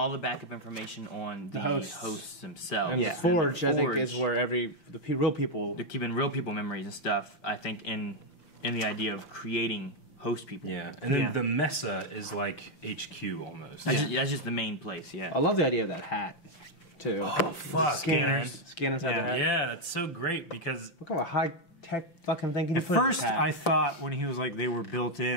the backup information on the hosts themselves. And the Forge, I think, is where the real people... They're keeping real people memories and stuff, I think, in the idea of creating host people. Yeah, and then the Mesa is like HQ almost. That's just the main place, yeah. I love the idea of that hat, too. Oh, fuck. Scanners inside the hat. Yeah, that's so great because... Look at what high-tech fucking thing you At first, I thought when he was they were built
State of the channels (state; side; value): late; right; 5.8 ms